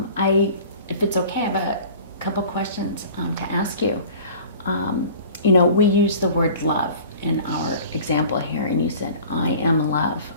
it's okay, I have a couple questions to ask you. We use the word love, in our example here, and you said, I am love,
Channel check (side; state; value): both; inverted; correlation -0.44